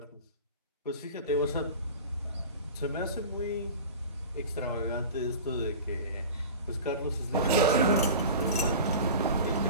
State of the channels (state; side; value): inverted; both; correlation -0.35